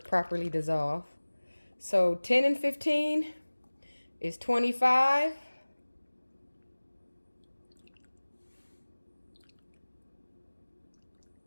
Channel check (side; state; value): both; inverted; correlation -1.00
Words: properly dissolved. So 10 and 15 is 25.